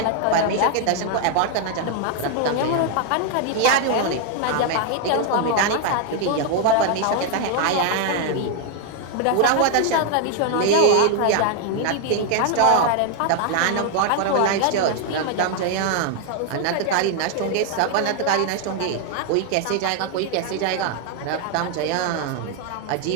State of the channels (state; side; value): different; both; correlation 0.00